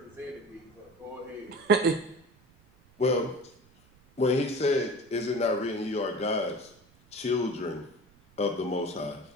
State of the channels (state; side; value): noise; right; rumble, 29 dB below the sound